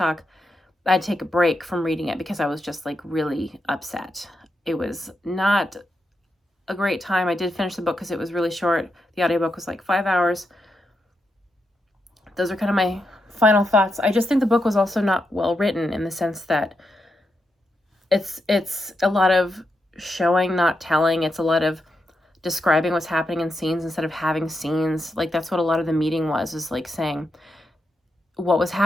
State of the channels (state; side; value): normal; both; correlation 0.85